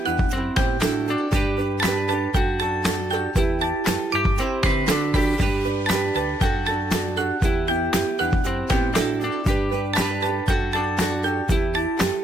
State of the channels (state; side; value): normal; both; correlation 0.78